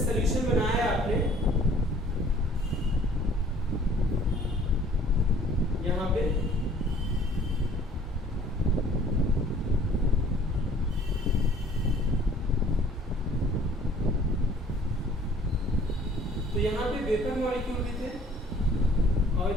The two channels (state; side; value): normal; both; correlation 0.54